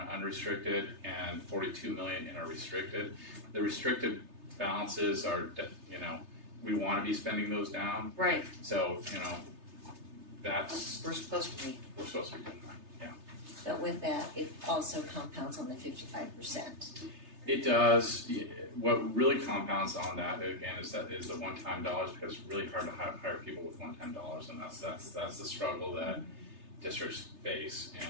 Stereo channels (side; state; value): left; late; 3.3 ms